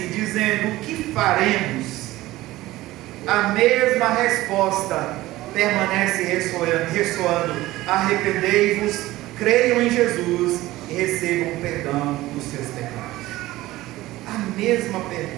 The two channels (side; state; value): left; quieter; 17.3 dB